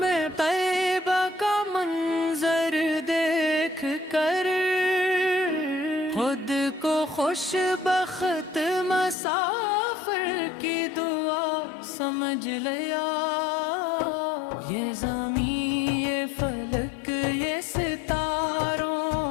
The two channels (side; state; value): right; drops out; at 9.2 s